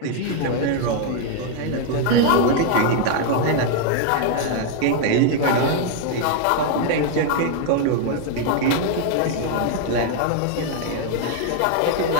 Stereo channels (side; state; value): both; different; correlation 0.00